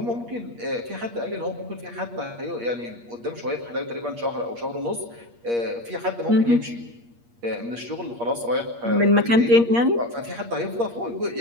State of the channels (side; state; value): left; late; 8.5 ms